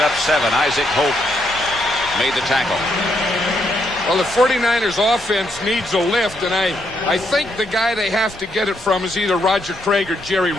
7. Isaac Hope made the tackle. Well, the 49ers offense needs a lift, and I think the guy they have to get it from is either Roger Craig or Jerry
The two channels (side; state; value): both; normal; correlation 0.76